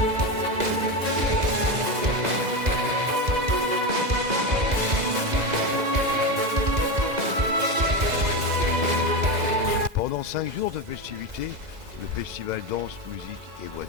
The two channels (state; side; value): late; left; 2.0 ms